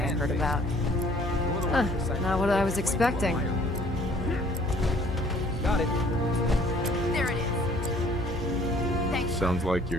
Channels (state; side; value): normal; both; correlation 0.57